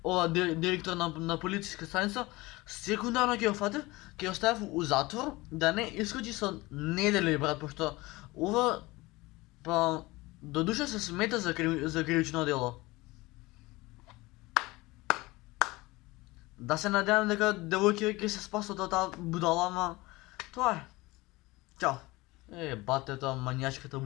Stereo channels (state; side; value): quieter; right; 21.4 dB